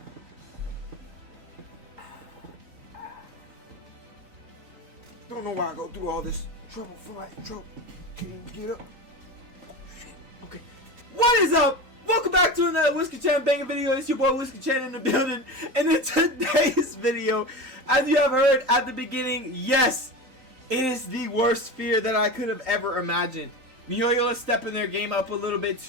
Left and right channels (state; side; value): late; left; 3.9 ms